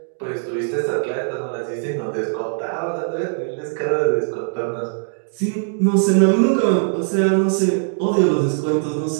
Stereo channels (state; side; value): silent; left; digital silence